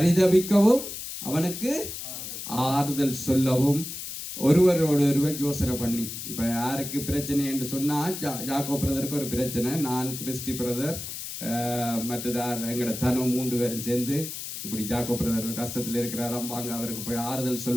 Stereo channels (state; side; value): noise; left; hiss, 8 dB below the sound